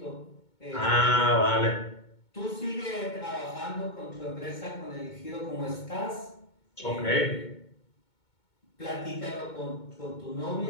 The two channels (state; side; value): late; right; 2.2 ms